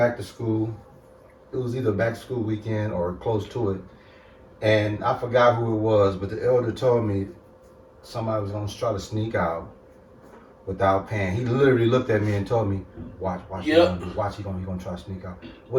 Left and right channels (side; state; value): both; identical; correlation 1.00